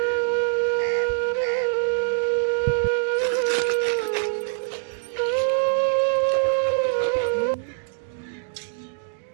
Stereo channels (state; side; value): silent; left; digital silence